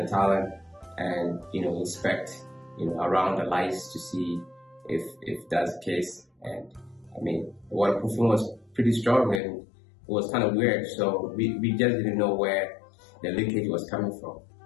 tiling and inspect around the lights to see if that's the case. And the waterproofing was pretty strong, and it was kind of weird. So we just didn't know where the leakage was coming from.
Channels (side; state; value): right; drops out; at 9.4 s